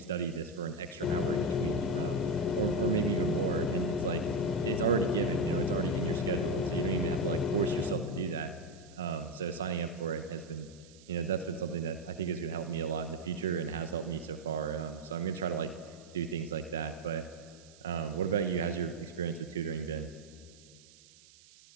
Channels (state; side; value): noise; right; hiss, 24 dB below the sound